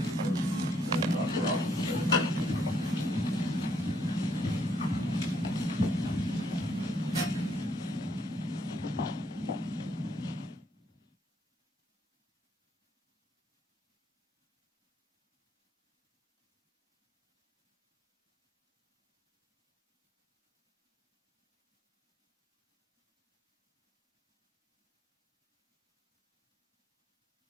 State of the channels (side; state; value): both; normal; correlation 0.70